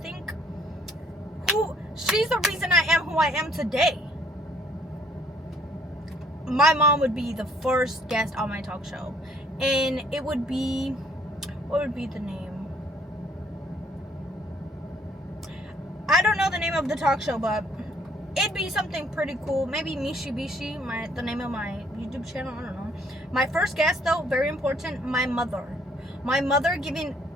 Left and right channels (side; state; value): both; normal; correlation 0.63